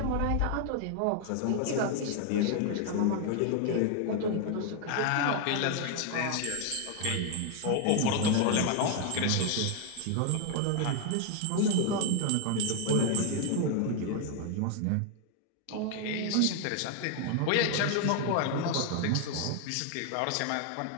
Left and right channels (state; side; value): different; both; correlation 0.00